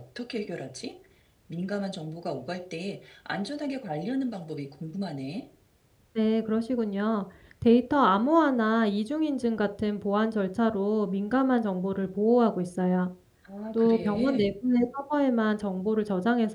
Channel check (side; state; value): both; identical; correlation 1.00